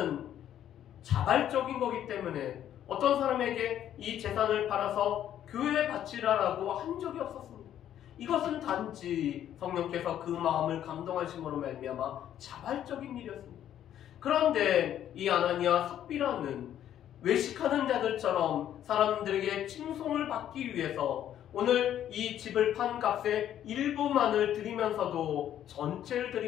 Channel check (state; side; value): quieter; right; 10.9 dB